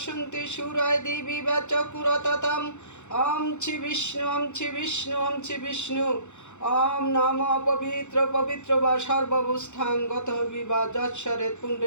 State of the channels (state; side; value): late; right; 0.83 ms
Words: সুরায় দিবি চকুরততম। ওম ছি বিষ্ণু ওম ছি বিষ্ণু ওম ছি বিষ্ণু। ওম নম পবিত্র পবিত্র বা সর্বাবস্থাং গত বিবা যৎসরে